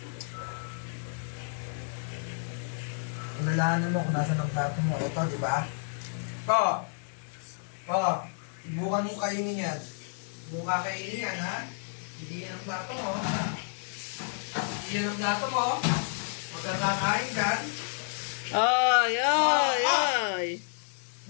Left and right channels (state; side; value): silent; right; 58 dB below the other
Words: Ilahanin mo kung nasa ng plato mo. Ito, di ba? Subukan mo kainin yan. Hindi mo kakainin yan, ha? Hindi yan ang plato mo. Hindi yan ang plato mo. Huwag kang kakain dyan. Ay, ay, ay.